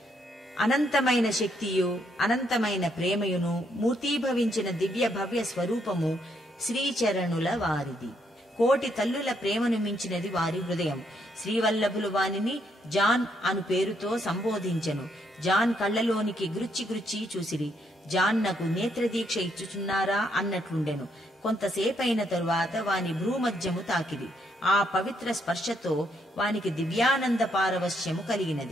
అనంతమైన శక్తియు అనంతమైన ప్రేమయును మూర్తీభవించిన దివ్య భవ్య స్వరూపము శ్రీచరణుల వారిది. కోటి తల్లుల ప్రేమను మించినది వారి హృదయం. శ్రీవల్లభులు వానిని జాన్ అను పేరుతో సంబోధించెను. జాన్ కళ్లలోనికి గురుచి గురుచి చూసిరి. జాన్ నాకు నేత్రదీక్ష ఇచ్చుచున్నారా అన్నట్లుండెను. కొంతసేపైన తరువాత వాని భ్రూమధ్యము తాకిరి. ఆ పవిత్ర స్పర్శతో వానికి దివ్యానంద పారవశ్యము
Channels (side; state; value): both; normal; correlation 0.74